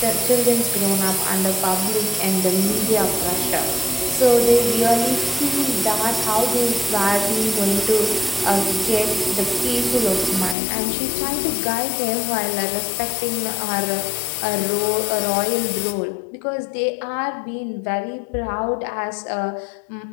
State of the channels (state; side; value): drops out; right; at 10.6 s